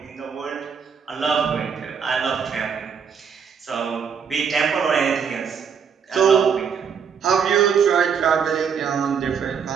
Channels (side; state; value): left; quieter; 6.8 dB